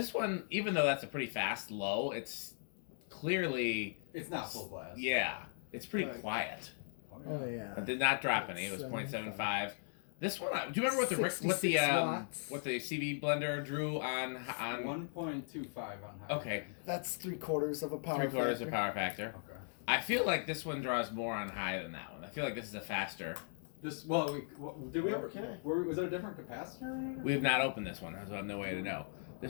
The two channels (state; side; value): silent; right; digital silence